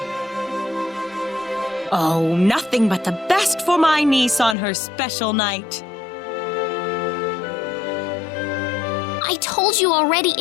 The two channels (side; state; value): right; drops out; at 4.5 s